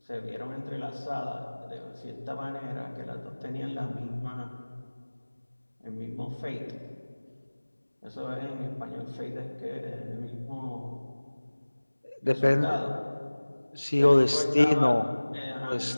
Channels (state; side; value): inverted; both; correlation -1.00